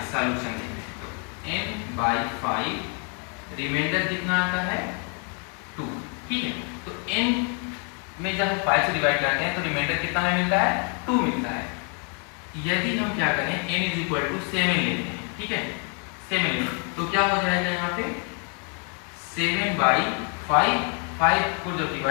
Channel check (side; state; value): right; quieter; 38.9 dB